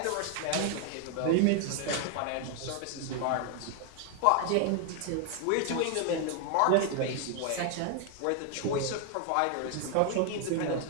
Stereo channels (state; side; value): different; both; correlation 0.01